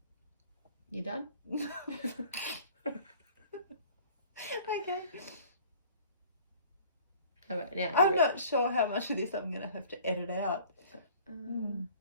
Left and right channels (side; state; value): both; inverted; correlation -0.49